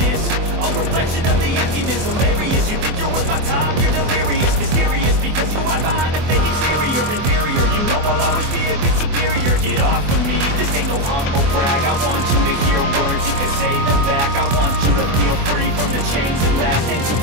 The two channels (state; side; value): late; left; 24 ms